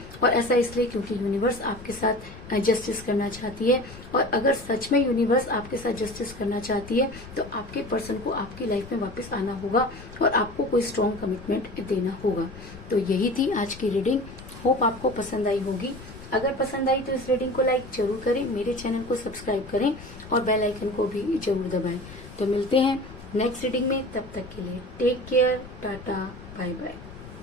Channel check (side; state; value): left; noise; rumble, 16 dB below the sound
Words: और ऐसा इसलिए क्योंकि यूनिवर्स आपके साथ जस्टिस करना चाहती है। और अगर सच में यूनिवर्स आपके साथ जस्टिस करना चाहती है तो आपके पर्सन को आपकी लाइफ में वापस आना होगा और आपको कोई स्ट्रॉन्ग कमिटमेंट देना होगा। तो यही थी आज की रीडिंग। होप आपको पसंद आई होगी। अगर पसंद आई तो इस रीडिंग को लाइक जरूर करें, मेरे चैनल को सब्सक्राइब करें और बेल आइकन को भी जरूर दबाएं। तो मिलते हैं नेक्स्ट रीडिंग में, तब तक के लिए take care, tata, bye bye.